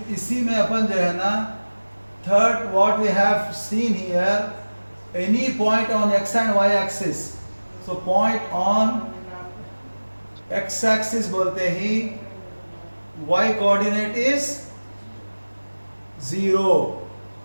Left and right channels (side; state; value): both; inverted; correlation -1.00